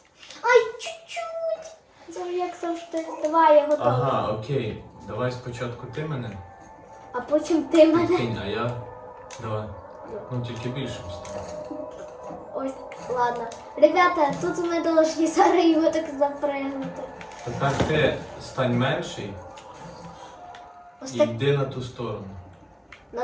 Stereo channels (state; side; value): identical; both; correlation 1.00